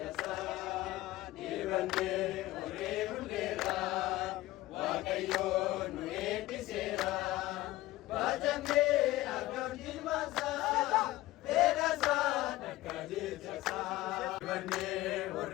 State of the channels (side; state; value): right; quieter; 17.1 dB